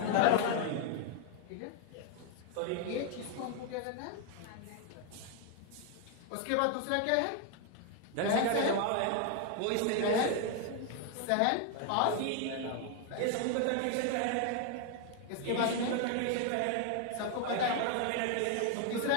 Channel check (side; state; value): both; different; correlation 0.00